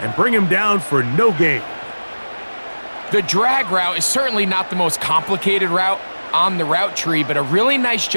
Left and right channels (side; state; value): both; inverted; correlation -1.00